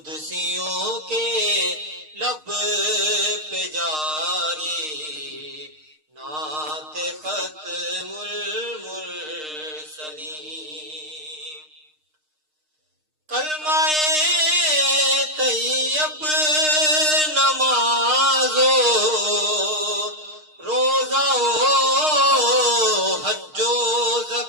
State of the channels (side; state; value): left; late; 6.5 ms